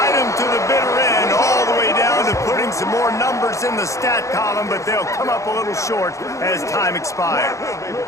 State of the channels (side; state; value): right; late; 0.15 ms